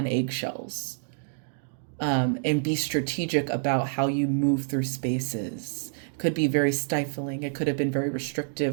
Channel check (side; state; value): left; silent; digital silence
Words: eggshells. and be strategic about how you move through spaces. It could be very stifling. It could have been very